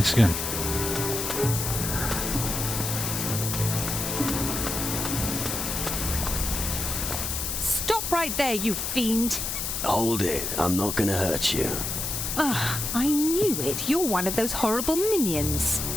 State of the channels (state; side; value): noise; left; hiss, 2 dB below the sound